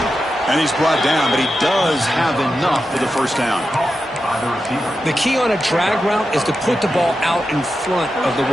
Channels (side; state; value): both; normal; correlation 0.90